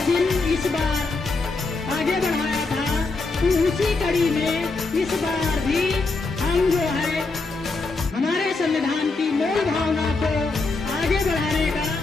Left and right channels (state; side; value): quieter; right; 3.7 dB